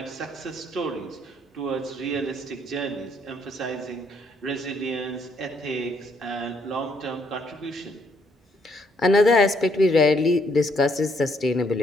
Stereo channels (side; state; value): both; normal; correlation 0.70